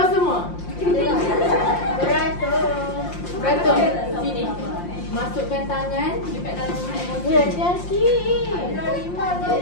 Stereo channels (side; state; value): right; late; 5.7 ms